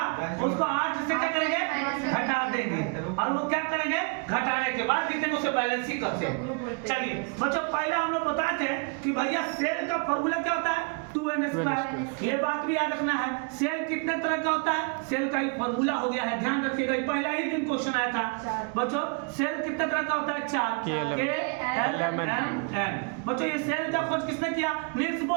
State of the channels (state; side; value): quieter; left; 36.2 dB